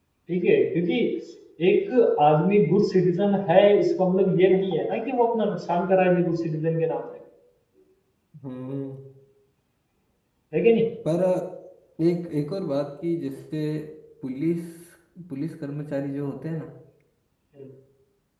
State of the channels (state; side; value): identical; both; correlation 1.00